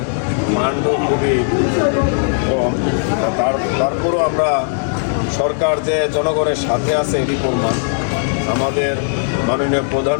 মানও খুবই কম। তারপরও আমরা সরকার যে জনগণের সাথে আছে এটি প্রমাণ। আমাদের মাননীয়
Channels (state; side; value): silent; right; 68 dB below the other